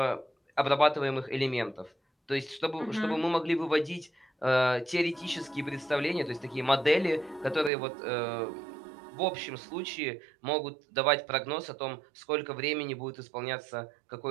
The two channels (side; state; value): left; drops out; at 7.7 s